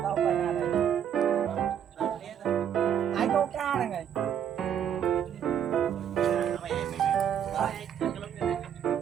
tao phải là này. Ai câu cá này này.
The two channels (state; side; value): quieter; left; 9.1 dB